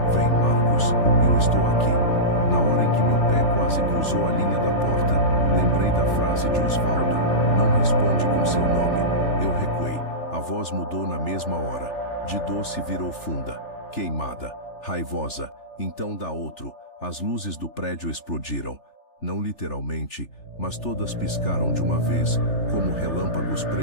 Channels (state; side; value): late; right; 3.4 ms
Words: Vem, Marcos, eu estou aqui. Na hora em que meu pé quase cruzou a linha da porta, lembrei da frase de Osvaldo: não responde com seu nome. Eu recuei. A voz mudou na mesma hora. De doce virou funda, queimada, raivosa. Então dá outro. As luzes do prédio explodiram. Não literalmente, mas todas piscaram de uma vez, como relâmpagos